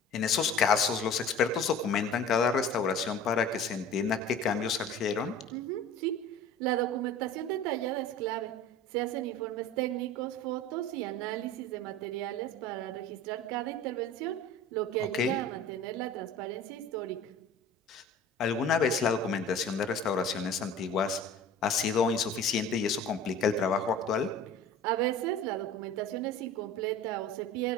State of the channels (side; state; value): both; normal; correlation 0.40